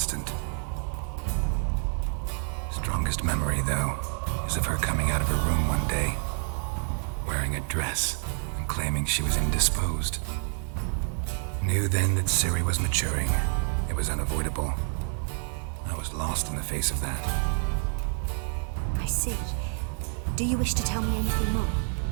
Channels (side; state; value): left; silent; 59 dB below the other